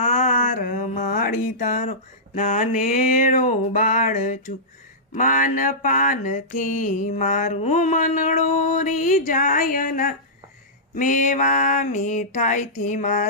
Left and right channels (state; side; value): normal; both; correlation -0.17